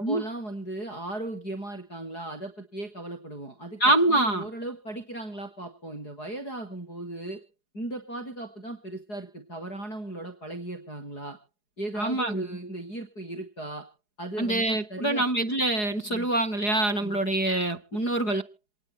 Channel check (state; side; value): late; right; 4.8 ms